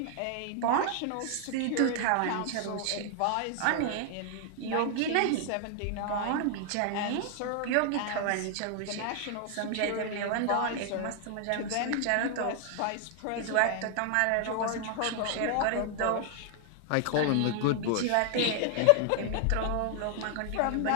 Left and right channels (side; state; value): both; different; correlation 0.00